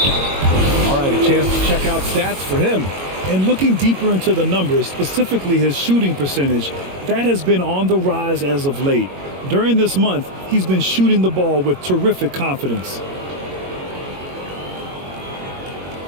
All right, a chance to check out stats for him. And looking deeper into the numbers, specifically his shooting percentage, that has been on the rise as of late. During this month, he's been shooting the ball with terrific confidence.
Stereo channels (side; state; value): left; late; 22 ms